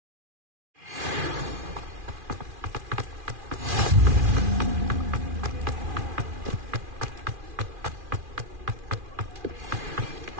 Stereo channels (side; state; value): left; late; 2.4 ms